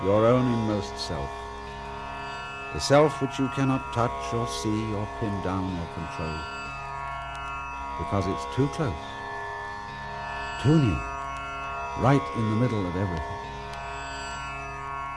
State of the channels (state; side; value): identical; both; correlation 1.00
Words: your own inmost self, the self which you cannot touch or see or pin down or control, because it's too close, too near, right in the middle of everything,